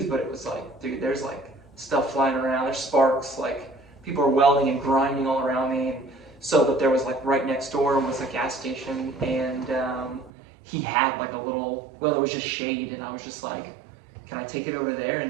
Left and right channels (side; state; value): left; drops out; at 10.3 s